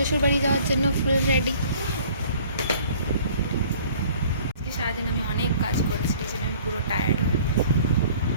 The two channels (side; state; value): both; inverted; correlation -0.52